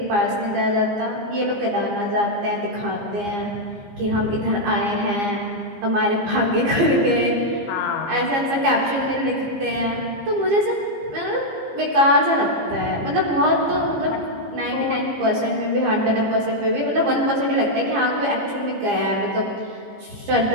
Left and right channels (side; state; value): left; late; 15 ms